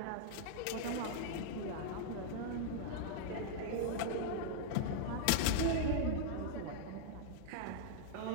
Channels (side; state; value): both; different; correlation -0.01